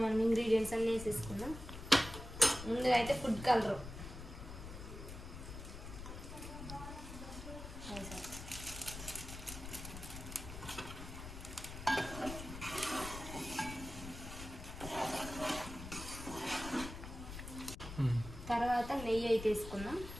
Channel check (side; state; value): left; noise; rumble, 10 dB below the sound